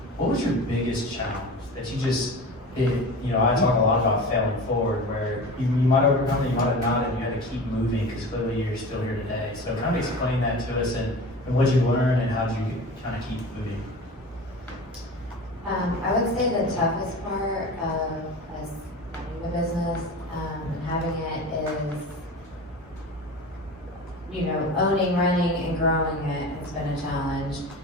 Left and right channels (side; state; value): both; normal; correlation 0.33